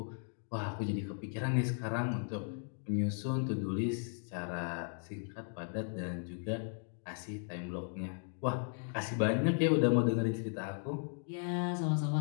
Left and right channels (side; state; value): right; silent; 54 dB below the other